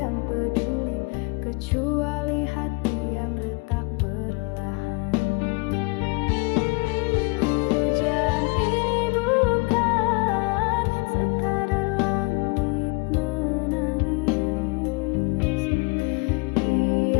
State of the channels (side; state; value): right; quieter; 28.9 dB